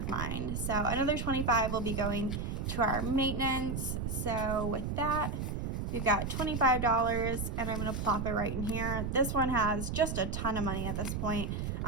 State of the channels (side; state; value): right; noise; rumble, 3 dB below the sound